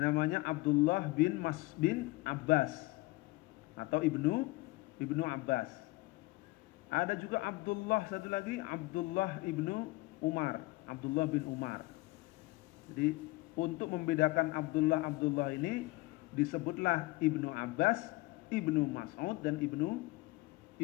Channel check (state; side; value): quieter; right; 21.5 dB